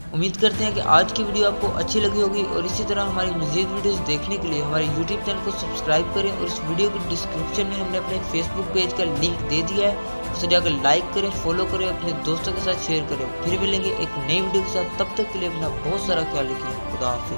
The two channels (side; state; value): both; inverted; correlation -1.00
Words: उम्मीद करते हैं कि आज की वीडियो आपको अच्छी लगी होगी और इसी तरह हमारी मज़ीद वीडियोस देखने के लिए हमारे यूट्यूब चैनल को सब्सक्राइब करें और इस वीडियो के डिस्क्रिप्शन में हमने अपने फेसबुक पेज का लिंक दे दिया है, उसे जाकर लाइक करें, फॉलो करें, अपने दोस्तों के साथ शेयर करें। फिर मिलेंगे एक नई वीडियो के साथ, तब तक के लिए अपना बहुत सारा ख्याल रखिए। खुदा